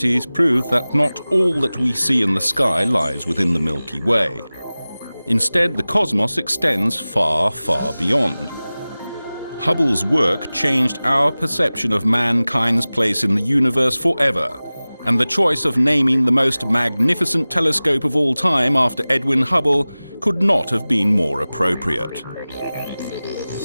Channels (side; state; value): both; inverted; correlation -0.98